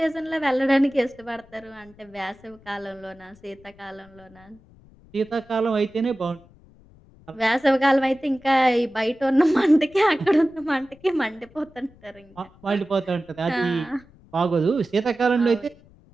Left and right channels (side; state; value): left; noise; rumble, 26 dB below the sound